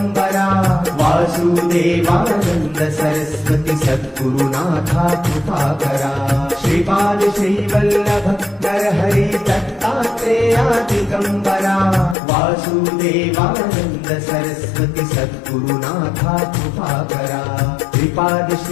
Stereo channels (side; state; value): right; drops out; at 12.2 s